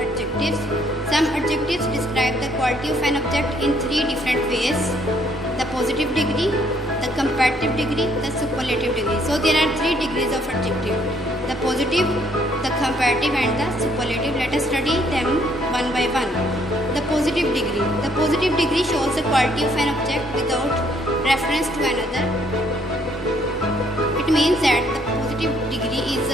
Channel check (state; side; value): normal; both; correlation 0.67